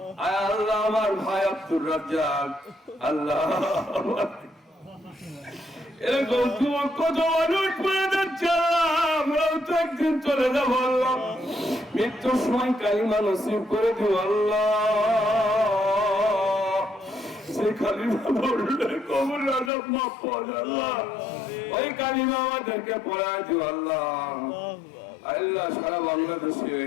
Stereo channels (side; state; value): right; drops out; at 19.7 s